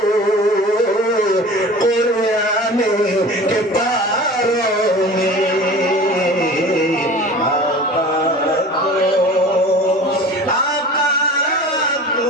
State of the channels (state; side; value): normal; both; correlation 0.39